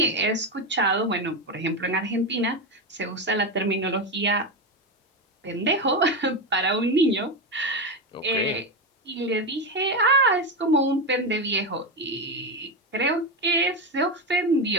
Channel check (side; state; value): both; normal; correlation 0.13